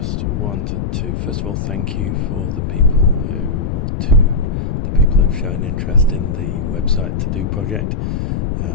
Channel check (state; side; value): noise; left; rumble, 2 dB below the sound